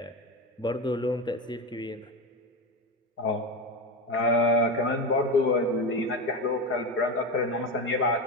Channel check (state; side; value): normal; both; correlation 0.18